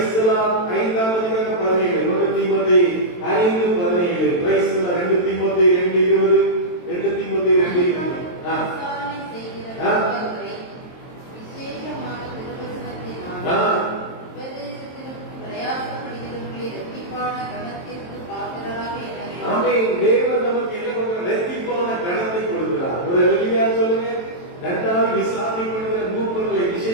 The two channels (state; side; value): late; right; 23 ms